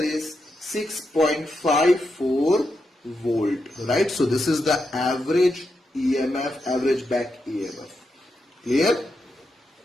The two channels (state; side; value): normal; both; correlation 0.85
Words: 6.54 volt, right? So this is the average EMF, average back EMF. Clear?